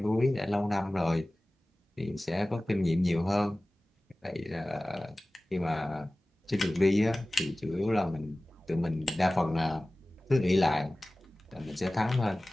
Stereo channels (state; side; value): normal; both; correlation 0.98